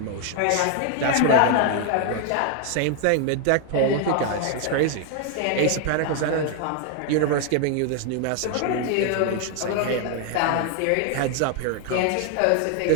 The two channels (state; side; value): different; both; correlation 0.01